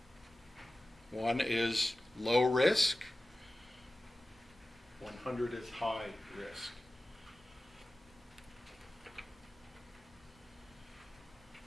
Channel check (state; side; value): normal; both; correlation 0.96